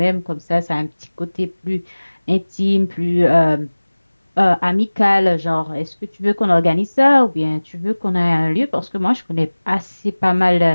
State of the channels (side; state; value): both; inverted; correlation -1.00